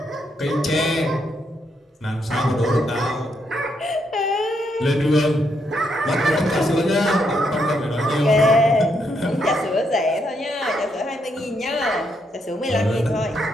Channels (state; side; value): normal; both; correlation 0.77